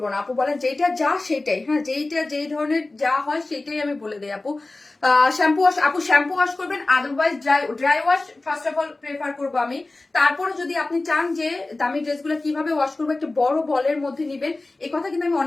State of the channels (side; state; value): right; quieter; 3.1 dB